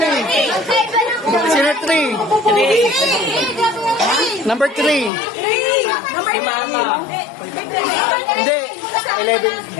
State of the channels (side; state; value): right; drops out; at 5.1 s